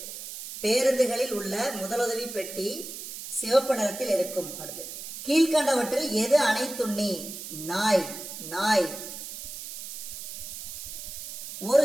பேருந்துகளில் உள்ள முதலுதவி பெட்டி சிவப்பு நிறத்தில் இருக்கும். அடுத்து கீழ்கண்டவற்றில் எது அனைத்துண்ணி? நாய். நாய். ஒரு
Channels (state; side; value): noise; right; hiss, 10 dB below the sound